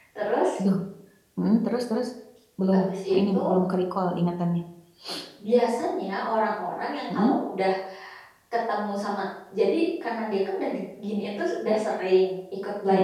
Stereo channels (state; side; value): identical; both; correlation 1.00